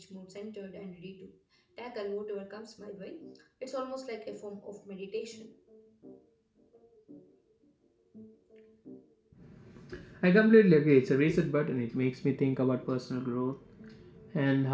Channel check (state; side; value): identical; both; correlation 1.00